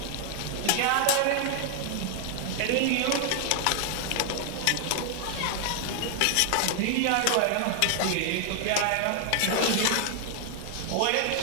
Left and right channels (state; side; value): different; both; correlation 0.00